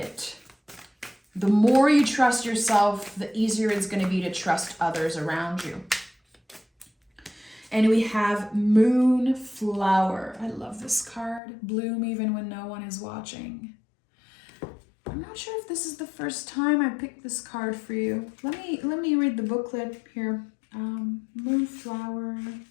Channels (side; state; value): right; drops out; at 11.4 s